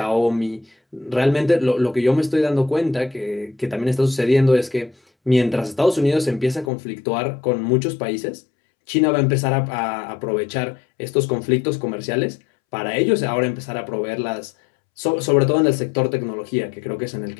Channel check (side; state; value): right; drops out; at 6.7 s